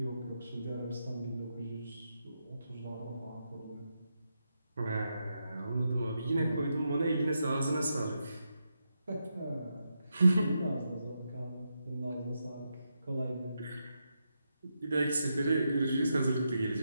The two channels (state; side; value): inverted; both; correlation -0.84